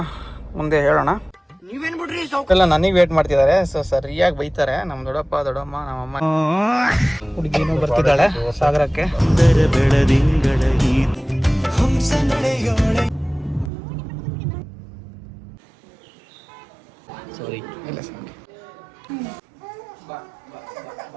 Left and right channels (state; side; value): drops out; left; at 13.7 s